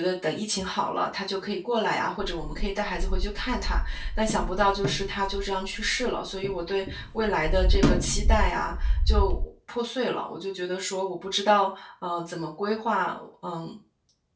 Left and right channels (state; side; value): identical; both; correlation 1.00